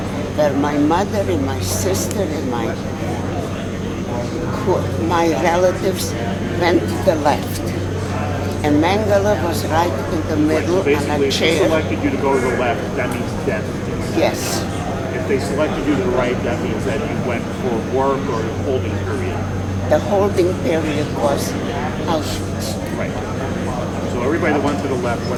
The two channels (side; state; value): both; identical; correlation 1.00